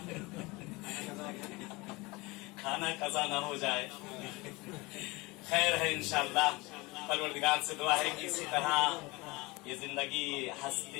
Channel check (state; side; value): quieter; right; 23.8 dB